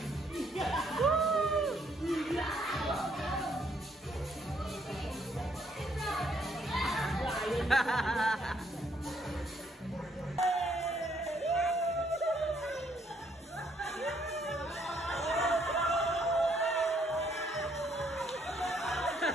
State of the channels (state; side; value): normal; both; correlation 0.69